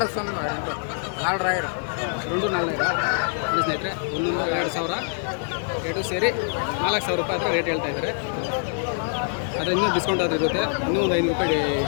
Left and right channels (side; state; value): right; silent; 56 dB below the other